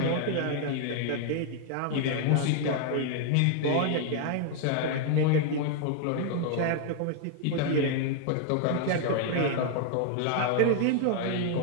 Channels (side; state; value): both; different; correlation 0.00